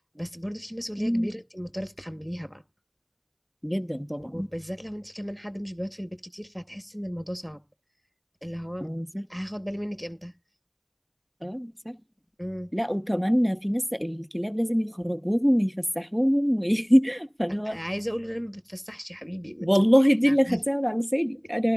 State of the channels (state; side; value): identical; both; correlation 1.00